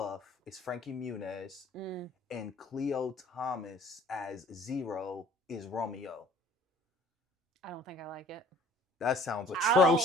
is Frankie Muniz and Cleo Thomas as Zero is Romeo. I don't think I like it. That sounds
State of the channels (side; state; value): both; normal; correlation 0.53